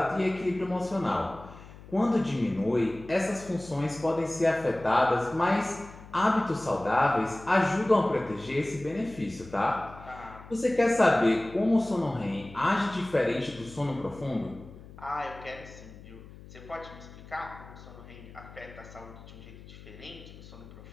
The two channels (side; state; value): left; noise; hum, 18 dB below the sound